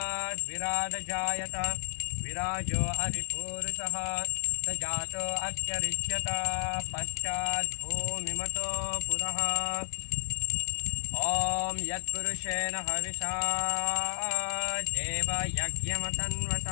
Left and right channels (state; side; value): silent; right; digital silence